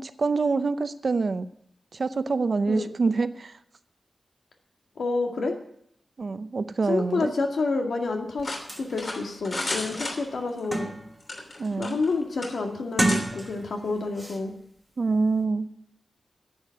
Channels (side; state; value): both; normal; correlation 0.90